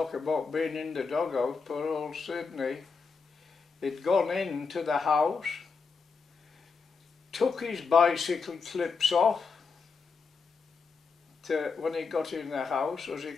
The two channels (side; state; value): right; quieter; 5.0 dB